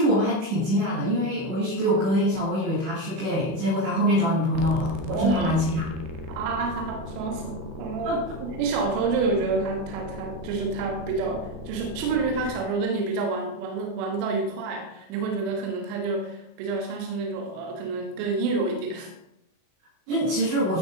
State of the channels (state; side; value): late; left; 37 ms